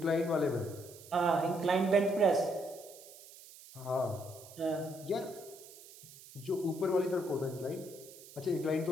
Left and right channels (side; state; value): right; noise; hiss, 19 dB below the sound